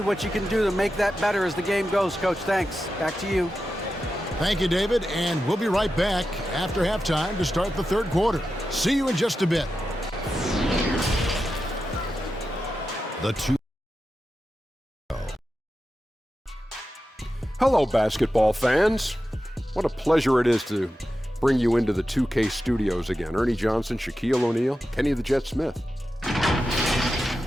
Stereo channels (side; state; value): both; normal; correlation 0.91